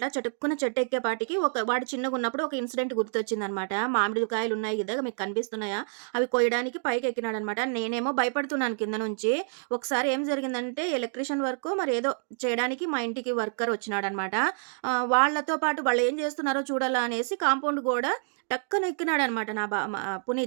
చటుక్కున చెట్టు ఎక్కేపాటికి వాడు చిన్నగా ఉన్నప్పుడు ఒక ఇన్సిడెంట్ గుర్తొచ్చిందనమాట. మామిడికాయలు ఉన్నాయి కదా, మీకు కనిపిస్తున్నాయా? అవి కొయ్యడానికి పైకి ఎక్కినాడనమాట. నేనేమో భయపడుతున్నాను కింద నుంచి. ఒకసారి ఏం జరిగిందంటే, ఎలక్ట్రీషియన్ వర్క్ మరి ఏదో చేయడానికి మా ఇంటికి వర్కర్ వచ్చినాడనమాట. వాళ్ళతో పాటు వాళ్ళు ఏం చేస్తున్నారో చూడాలా అనేసి కాంపౌండ్ గోడ టక్కన ఎక్కినాడనమాట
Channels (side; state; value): left; silent; digital silence